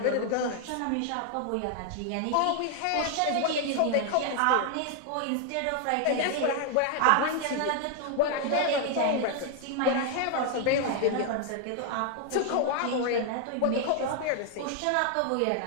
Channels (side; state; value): both; different; correlation 0.00